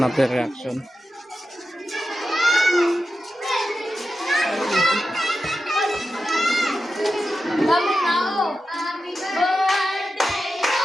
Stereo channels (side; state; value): both; normal; correlation 0.91